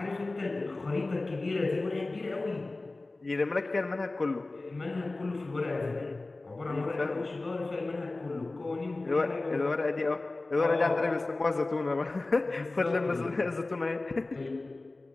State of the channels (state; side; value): quieter; right; 3.1 dB